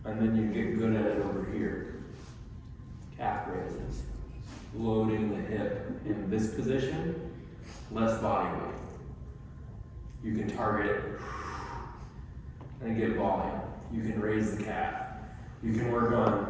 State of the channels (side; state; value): both; identical; correlation 1.00